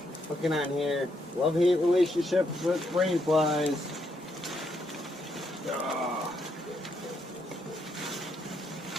Looking on here. Love-hate relationship with rain flies.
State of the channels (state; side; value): normal; both; correlation 0.76